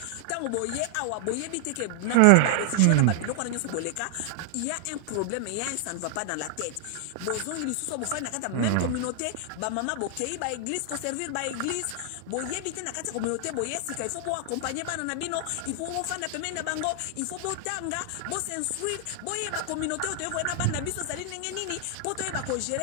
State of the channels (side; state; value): both; different; correlation 0.00